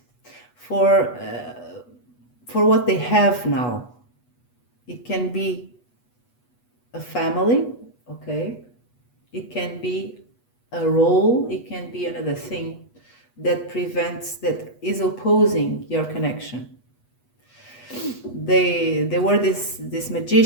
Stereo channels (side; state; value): right; late; 8.2 ms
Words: for what they have now. It can be a family, okay? It can be a role, it can be another thing that is opposing your connection. They were this